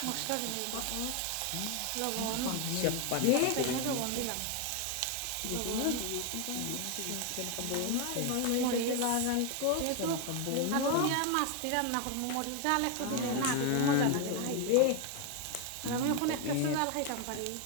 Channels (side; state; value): both; different; correlation 0.01